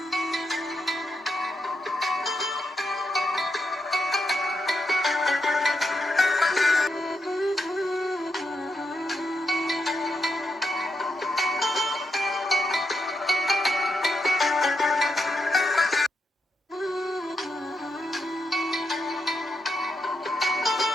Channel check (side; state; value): both; normal; correlation 0.82